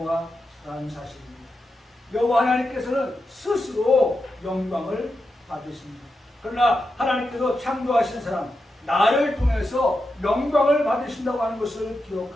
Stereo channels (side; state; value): both; normal; correlation 0.88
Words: 사실입니다. 여호와 하나님께서는 스스로 영광을 받으십니다. 그러나 하나님께서 창조하신 사람 나를 통해서 영광을 받으신다고 하는 것을